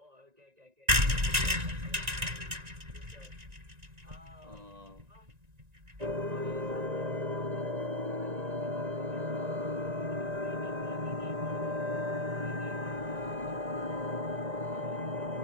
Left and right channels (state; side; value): late; left; 1.9 ms